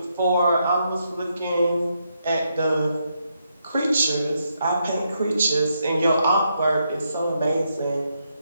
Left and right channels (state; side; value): inverted; both; correlation -0.79